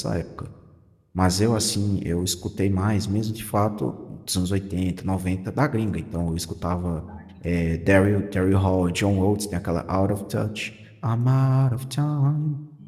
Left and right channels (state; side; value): identical; both; correlation 1.00